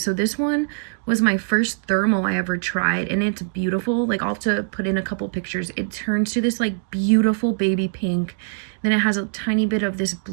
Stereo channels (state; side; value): silent; left; digital silence